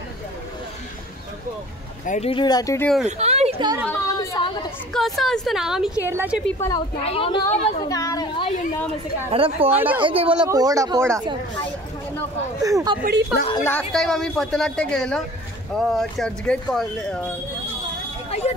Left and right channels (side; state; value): both; normal; correlation 0.46